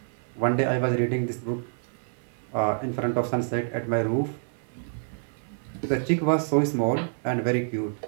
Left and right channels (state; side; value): silent; left; 60 dB below the other